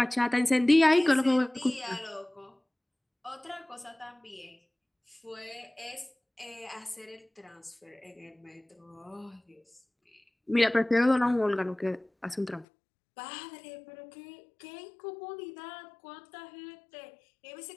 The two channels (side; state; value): right; drops out; at 12.7 s